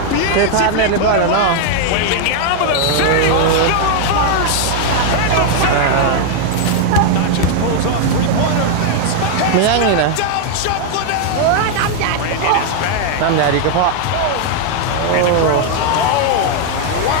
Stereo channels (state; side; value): different; both; correlation 0.00